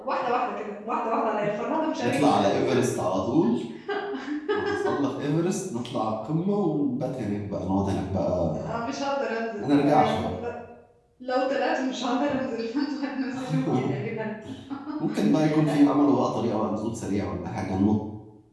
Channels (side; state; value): both; identical; correlation 1.00